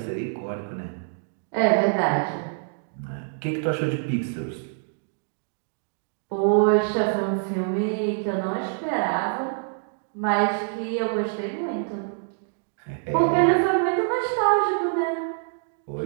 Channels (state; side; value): silent; left; digital silence